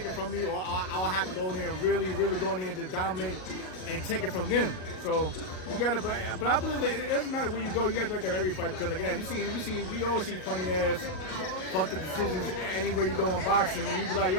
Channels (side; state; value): right; late; 38 ms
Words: it from me, or I'll have to go in there and really go in there and just dominate and take it from them. So you gotta, but I believe it doesn't matter where you go. You gotta be like that every fight, because again, we always see funny ass fuck the decisions anywhere you go in boxing. When you be like,